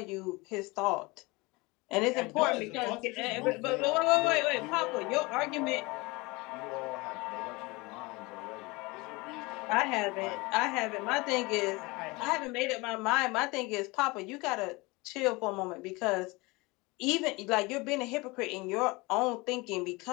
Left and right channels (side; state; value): right; quieter; 24.4 dB